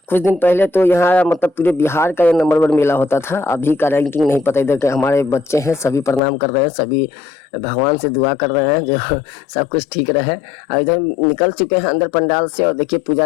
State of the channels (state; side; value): drops out; right; at 6.2 s